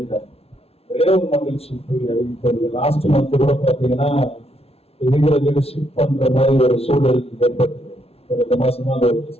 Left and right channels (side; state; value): right; late; 0.29 ms